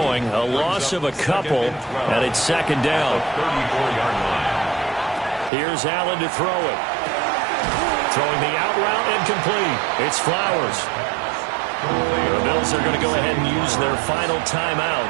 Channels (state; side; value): drops out; left; at 5.5 s